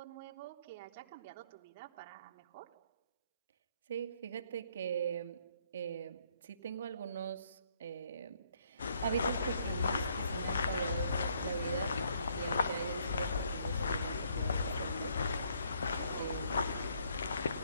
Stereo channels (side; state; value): both; inverted; correlation -0.68